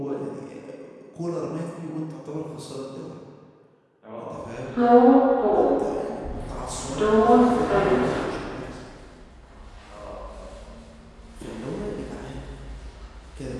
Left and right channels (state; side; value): identical; both; correlation 1.00